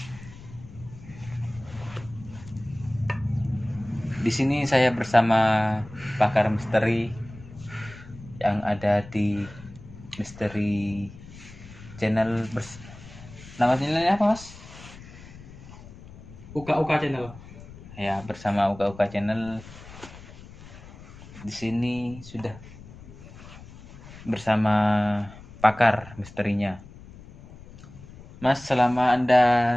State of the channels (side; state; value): left; noise; rumble, 18 dB below the sound